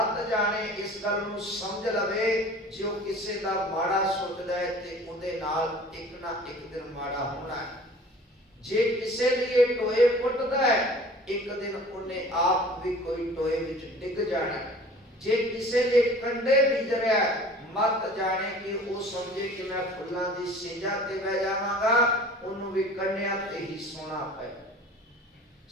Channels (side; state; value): both; normal; correlation 0.45